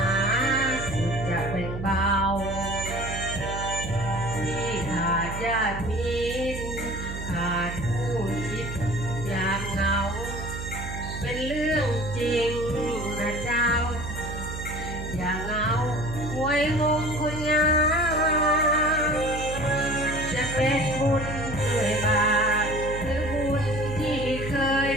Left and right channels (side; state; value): right; noise; hum, 7 dB below the sound